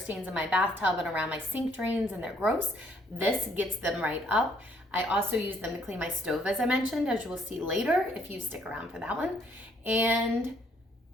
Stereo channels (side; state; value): both; normal; correlation 0.66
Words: in my bathtub and around my sink drains, and they're gross. This gets them right up. I also use them to clean my stove, as I mentioned, as you will see later if you stick around for that one. And